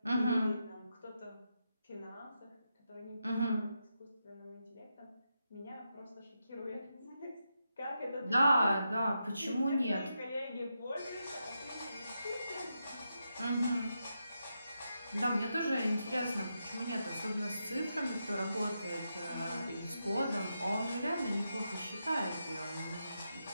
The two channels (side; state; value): both; inverted; correlation -0.85